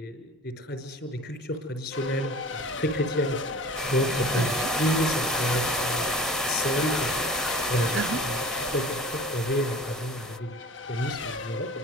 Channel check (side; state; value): both; normal; correlation 0.41